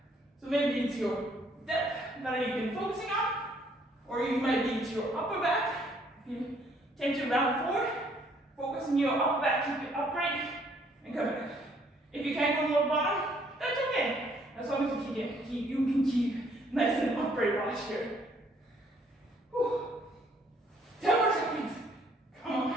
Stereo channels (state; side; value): normal; both; correlation 0.65